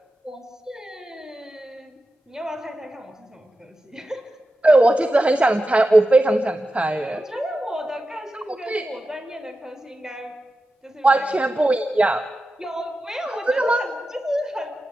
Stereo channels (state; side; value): normal; both; correlation 0.92